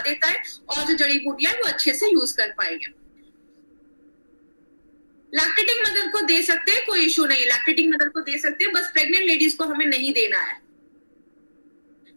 देता है और जो जड़ी बूटियां है वो अच्छे से यूज कर पाएंगे। लैक्टेटिंग मदर को दे सकते हैं, कोई इशू नहीं, लैक्टेटिंग मदर को दे सकते हैं, बस प्रेग्नेंट लेडीज को हमें नहीं देना है।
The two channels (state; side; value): inverted; both; correlation -1.00